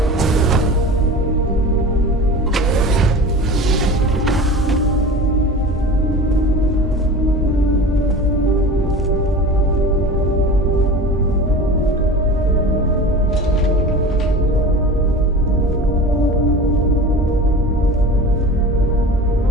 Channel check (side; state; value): both; normal; correlation 0.35